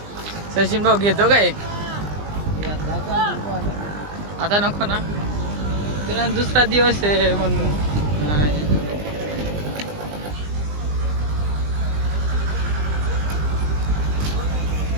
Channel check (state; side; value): late; left; 20 ms